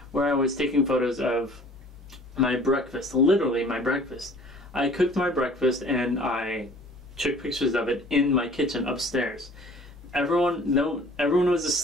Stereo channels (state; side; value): normal; both; correlation 0.50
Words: where I was taking photos of my breakfast, literally my breakfast. I cooked my breakfast and I took pictures of it in my kitchen upstairs. Everyone was